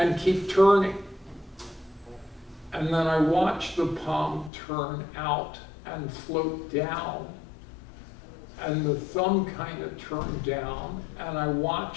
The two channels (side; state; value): right; drops out; at 4.5 s